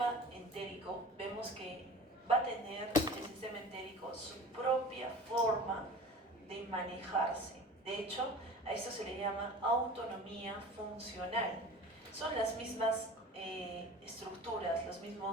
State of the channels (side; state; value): both; normal; correlation 0.39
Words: entérico, vemos que va a tener el sistema entérico su propia forma de manejarse. De hecho, a esto se le llama autonomía funcional. Son las mismas estructuras, los